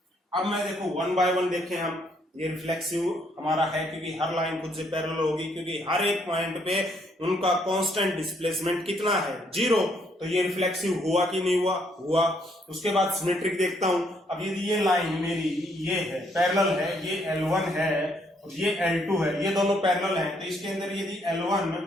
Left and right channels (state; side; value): normal; both; correlation 0.70